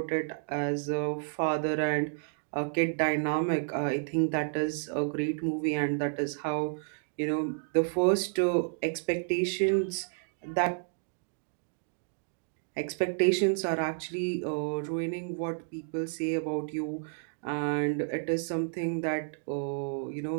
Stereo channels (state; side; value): silent; left; digital silence